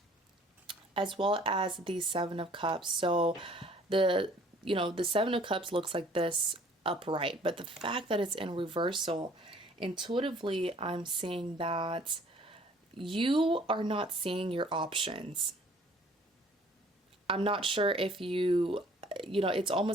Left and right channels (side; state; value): both; normal; correlation 0.55